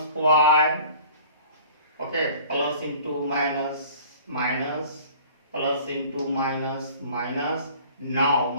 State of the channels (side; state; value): both; inverted; correlation -0.48